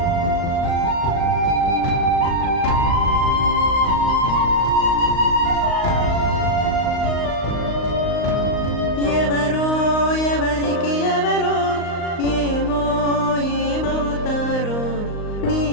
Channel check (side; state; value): right; late; 38 ms